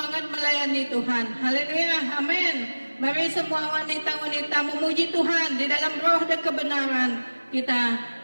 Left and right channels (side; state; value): both; inverted; correlation -1.00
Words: melayani Tuhan. Haleluya, amin. Mari semua wanita-wanita memuji Tuhan di dalam roh dan kebenaran. Kita